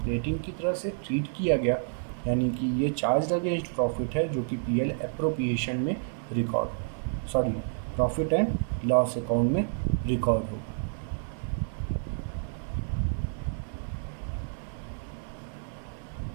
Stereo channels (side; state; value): left; silent; 58 dB below the other